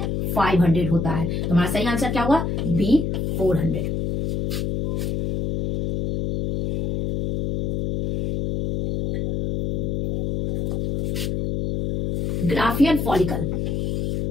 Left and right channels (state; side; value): noise; left; hum, 1 dB below the sound